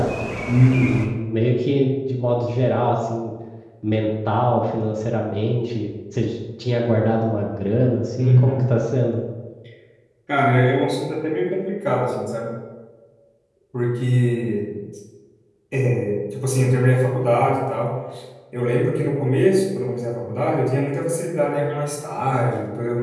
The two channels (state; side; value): identical; both; correlation 1.00